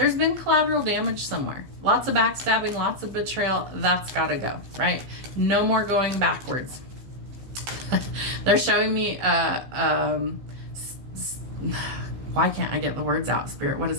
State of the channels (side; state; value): left; late; 15 ms